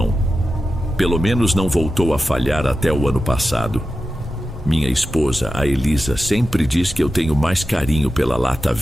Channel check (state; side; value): normal; both; correlation 0.92